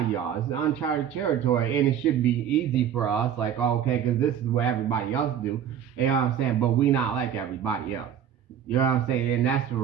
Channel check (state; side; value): quieter; left; 9.3 dB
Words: of y'all, it's uncharted territory, and it should be easy for us. Like, okay, because this is what everybody else do. You know what I'm saying? But we not like everybody else. You know what I'm saying? And that's for